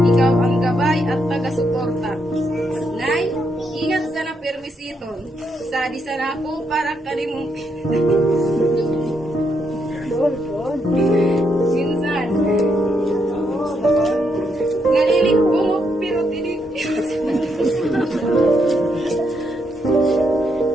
Ikaw ang gabay at taga-suporta. Nay, ingat sana permisiton. Sadi sana ako para kanimong minsan. Nalilig ko mo pero tinig.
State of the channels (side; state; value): both; normal; correlation 0.78